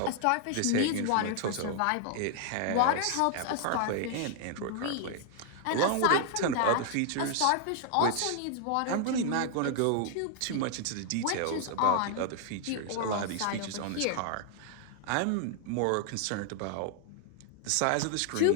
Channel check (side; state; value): both; different; correlation 0.00